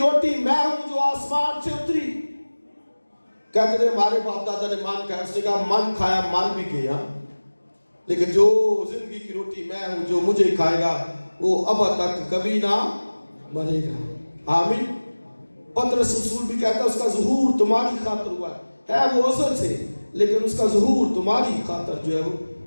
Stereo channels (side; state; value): both; inverted; correlation -1.00